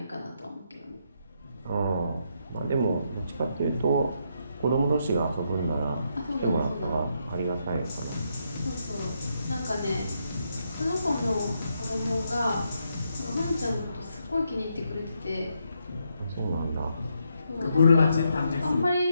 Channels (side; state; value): both; inverted; correlation -0.79